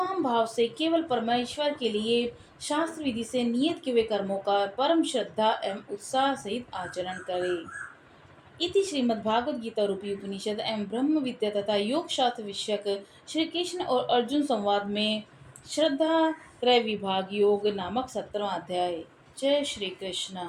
भाव से केवल परमेश्वर के लिए शास्त्र विधि से नियत किए हुए कर्मों का परम श्रद्धा एवं उत्साह सहित आचरण करे। इति श्रीमद्भागवत गीता रूपी उपनिषद एवं ब्रह्म विद्या तथा योग शास्त्र विषयक श्री कृष्ण और अर्जुन संवाद में श्रद्धा त्रय विभाग योग नामक 17वां अध्याय। जय श्री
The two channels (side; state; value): both; identical; correlation 1.00